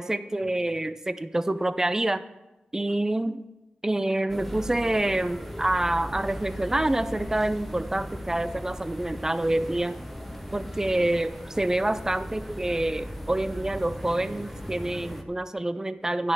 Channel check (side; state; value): both; normal; correlation 0.98